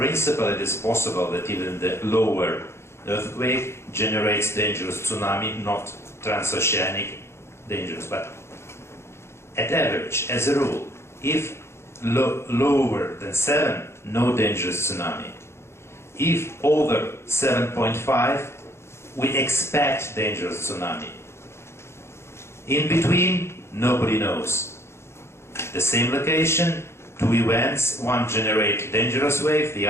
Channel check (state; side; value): late; right; 0.13 ms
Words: it is possible that even the lower earthquake generates dangerous tsunami, not transoceanic dangerous, but at average, as a rule, if lower than 7, no dangerous tsunami. If over 7.5, we expect dangerous tsunami. In between, nobody knows. The same location, two events, one generates dangerous wave, the